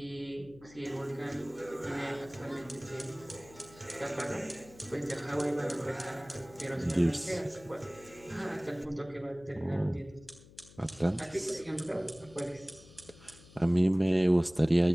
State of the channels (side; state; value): left; noise; hum, 22 dB below the sound